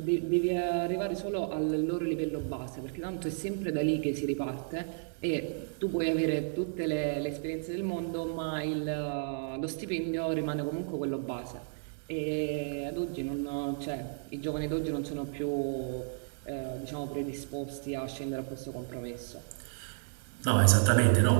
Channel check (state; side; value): silent; left; 55 dB below the other